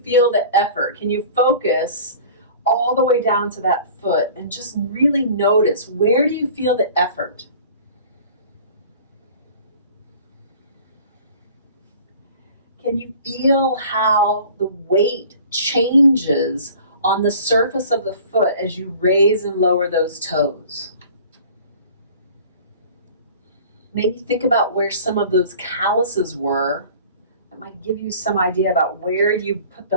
feel the effort? Can you focus all the way down to that foot and just really notice, where do you feel the effort? Can you feel how the weight changes on the surface of the foot as you raise and lower those toes? Maybe think about where some of those calluses were. That might give you some idea about where you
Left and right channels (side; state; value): both; inverted; correlation -0.45